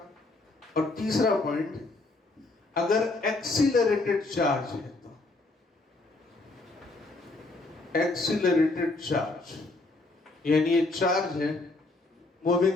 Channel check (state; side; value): quieter; right; 3.2 dB